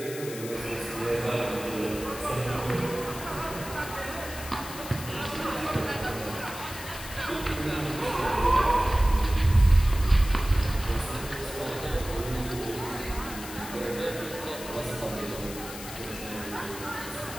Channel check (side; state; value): left; noise; hiss, 11 dB below the sound